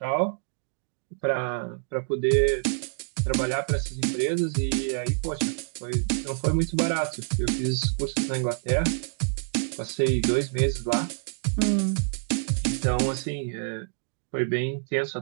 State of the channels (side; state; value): left; silent; digital silence